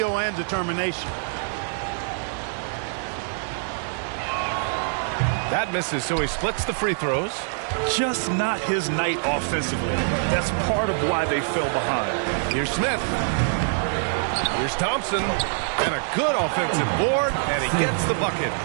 and determination. That misses, so he splits the free throws. Just not his night offensively. That's part of why they fell behind. Here's Smith. Here's Thompson. And a good offensive board, and he gets the bucket.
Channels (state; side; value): silent; left; 62 dB below the other